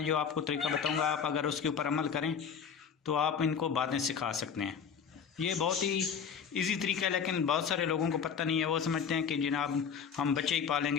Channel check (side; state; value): right; quieter; 6.9 dB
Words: जो आपको तरीका बताऊंगा, आप अगर उसके ऊपर अमल करें तो आप इनको बातें सिखा सकते हैं। ये बहुत ही इजी तरीका है, लेकिन बहुत सारे लोगों को पता नहीं है। वो समझते हैं कि जनाब हम बच्चे ही